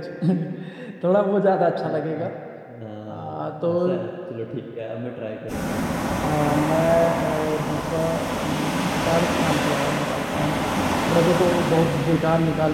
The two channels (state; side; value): identical; both; correlation 1.00